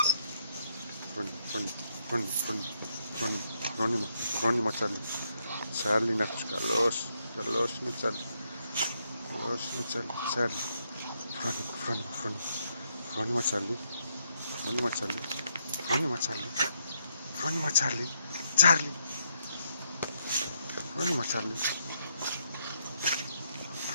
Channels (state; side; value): inverted; both; correlation -0.77